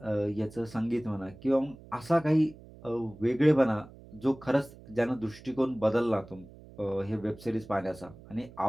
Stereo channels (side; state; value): right; noise; hum, 20 dB below the sound